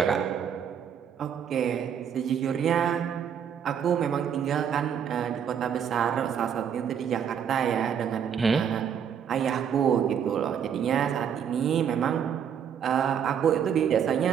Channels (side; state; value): left; quieter; 8.2 dB